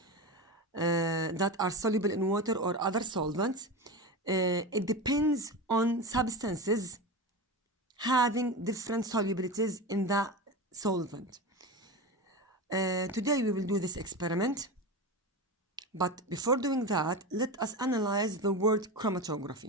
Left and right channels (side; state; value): both; normal; correlation 0.23